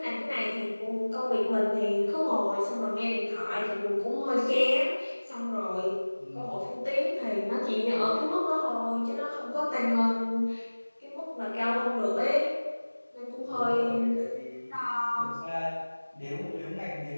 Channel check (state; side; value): inverted; both; correlation -1.00